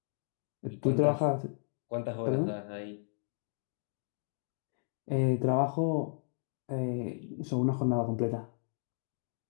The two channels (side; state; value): right; silent; digital silence